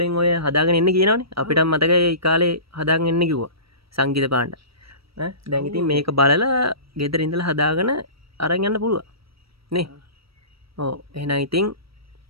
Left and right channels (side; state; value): left; late; 0.76 ms